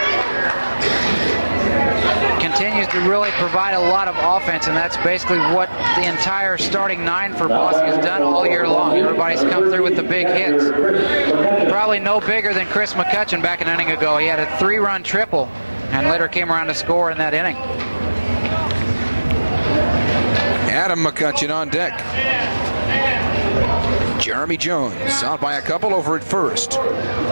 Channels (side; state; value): both; inverted; correlation -1.00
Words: Continues to really provide a lot of offense, and that's basically what the entire starting 9 for Bosse has done all year long. Everybody's come through with the big hits. Probably no bigger than Chris McCutcheon back an inning ago. He had a 3-run triple and later came around to score in that inning. Adam McCutcheon on deck. Jeremy Jones out by a couple over at first.